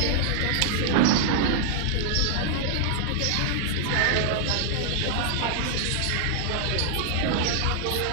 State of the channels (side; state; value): both; different; correlation -0.01